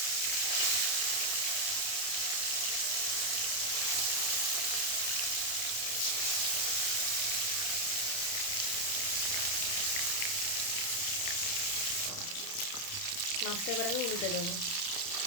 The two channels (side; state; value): right; late; 30 ms